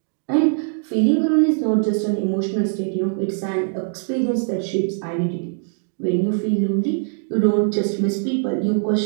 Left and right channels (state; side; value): silent; left; digital silence